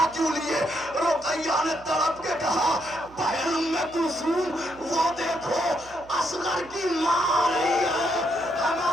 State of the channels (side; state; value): right; noise; hum, 23 dB below the sound